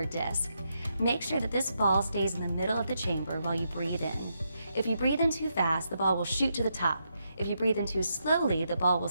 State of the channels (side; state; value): both; inverted; correlation -0.82